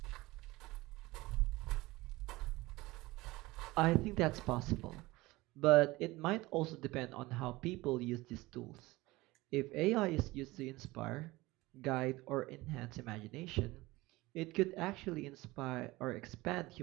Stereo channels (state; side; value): quieter; left; 20.3 dB